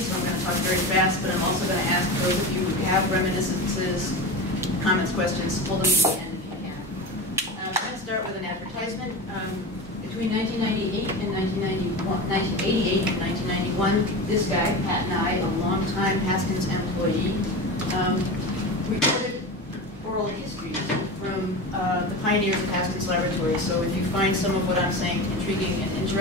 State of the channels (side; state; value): both; normal; correlation 0.26